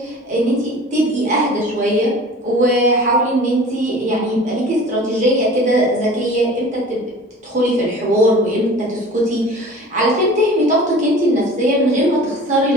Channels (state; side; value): normal; both; correlation 0.42